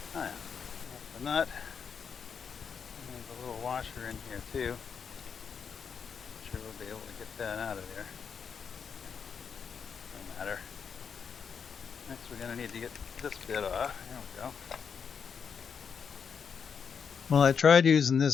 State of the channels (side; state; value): right; quieter; 6.5 dB